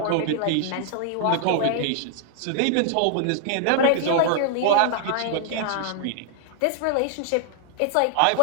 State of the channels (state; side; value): different; both; correlation 0.00